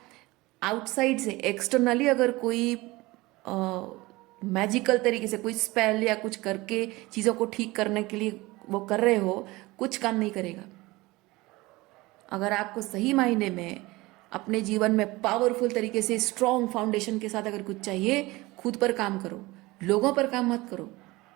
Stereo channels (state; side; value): quieter; left; 21.0 dB